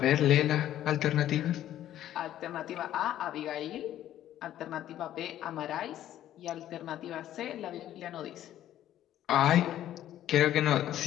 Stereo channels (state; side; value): quieter; right; 12.2 dB